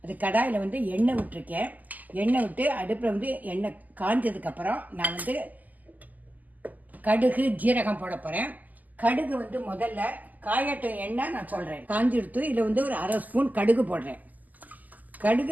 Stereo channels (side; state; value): left; late; 0.081 ms